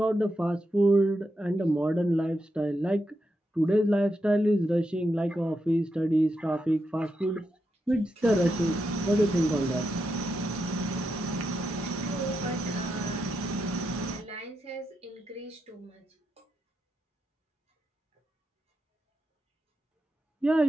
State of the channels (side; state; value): both; normal; correlation 0.85